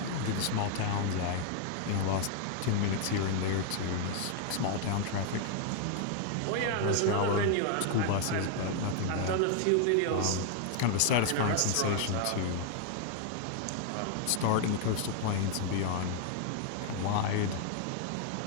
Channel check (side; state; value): both; different; correlation 0.00